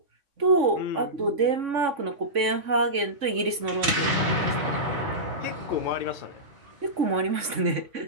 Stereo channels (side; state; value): left; late; 3.6 ms